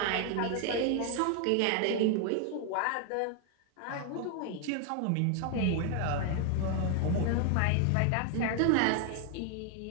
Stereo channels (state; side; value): different; both; correlation 0.01